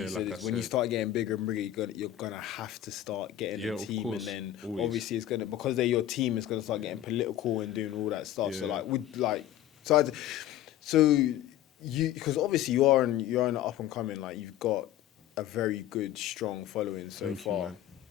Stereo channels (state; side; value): quieter; right; 12.7 dB